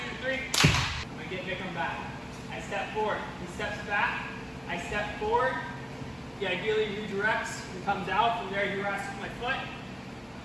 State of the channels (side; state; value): both; identical; correlation 1.00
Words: 3. I'm gonna get Vikram back. I step forward. He steps back. I step forward. He ideally redirects and comes out. From there, he rests with my foot.